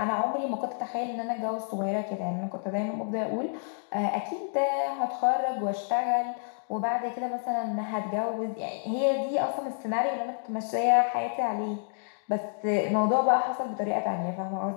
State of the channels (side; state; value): right; silent; digital silence